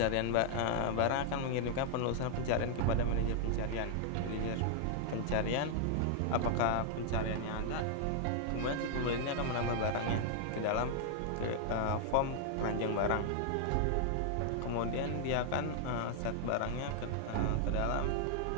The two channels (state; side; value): different; both; correlation -0.01